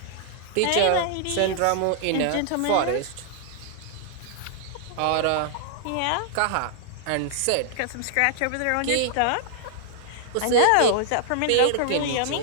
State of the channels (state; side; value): different; both; correlation -0.01